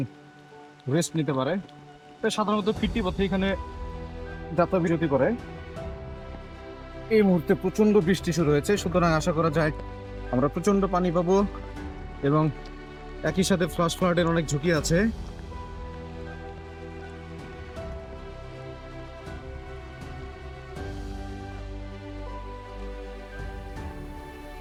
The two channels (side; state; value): both; identical; correlation 1.00